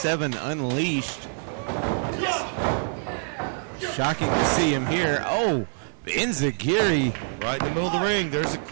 Unleashed. Shocking to see him here. Oh, Enziguri. Right in the middle of the ring. There's a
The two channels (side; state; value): left; silent; 61 dB below the other